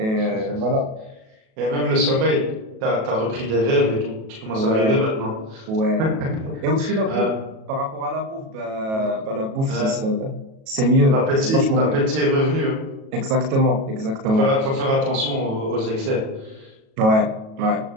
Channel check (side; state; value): left; late; 37 ms